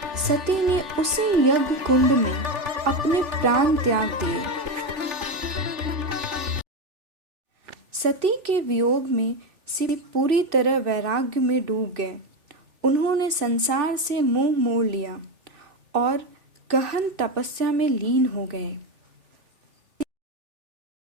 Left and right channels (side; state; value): left; late; 3.4 ms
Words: सती ने उसी यज्ञ कुंड में अपने प्राण त्याग दिए। सती के वियोग में शिव पूरी तरह वैराग्य में डूब गए। उन्होंने संसार से मुंह मोड़ लिया और गहन तपस्या में लीन हो गए।